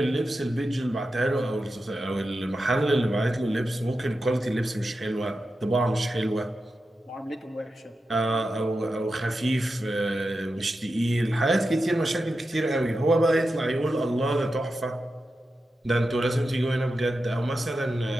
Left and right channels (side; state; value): both; normal; correlation 0.90